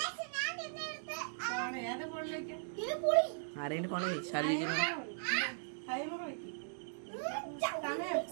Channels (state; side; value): silent; left; digital silence